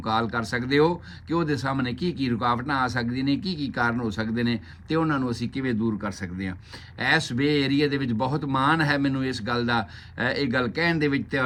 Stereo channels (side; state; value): both; identical; correlation 1.00